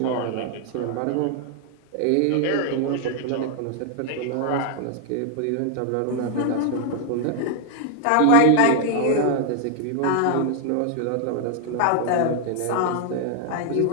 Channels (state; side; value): different; both; correlation 0.00